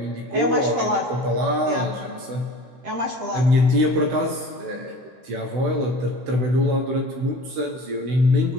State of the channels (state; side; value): late; left; 16 ms